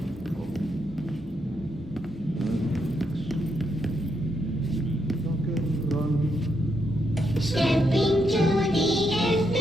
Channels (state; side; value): normal; both; correlation 0.79